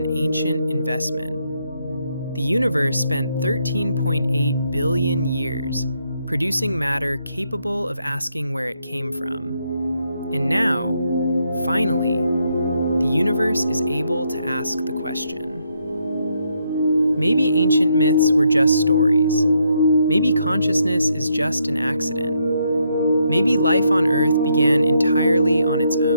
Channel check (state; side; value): inverted; both; correlation -0.76